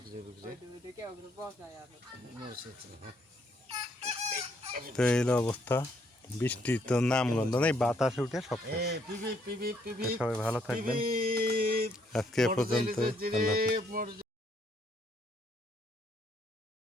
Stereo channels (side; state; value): both; normal; correlation 0.70